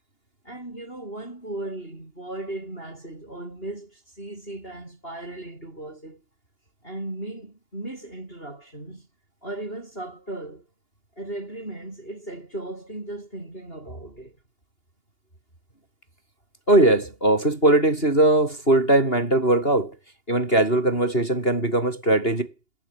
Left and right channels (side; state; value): right; late; 2.8 ms